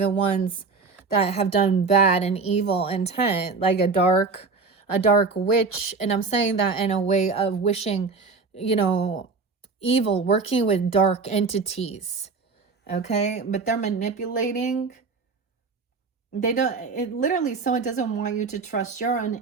ones that have done bad and evil intent, like a dark witch. And I'm saying that in a way of wishing, you know, evil, working with dark entities. Okay, but they're manipulating. Literally, someone doesn't want you to trust your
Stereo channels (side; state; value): left; quieter; 4.5 dB